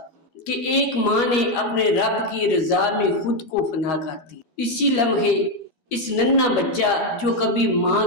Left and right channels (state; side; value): late; right; 13 ms